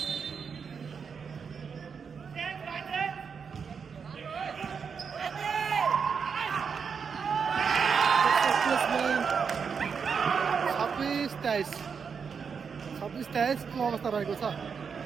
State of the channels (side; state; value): left; quieter; 6.1 dB